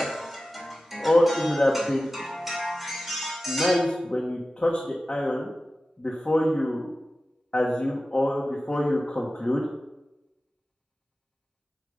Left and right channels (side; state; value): both; normal; correlation 0.95